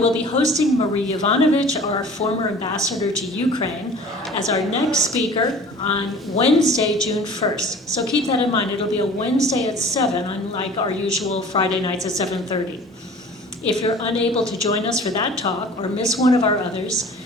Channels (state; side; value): normal; both; correlation 0.45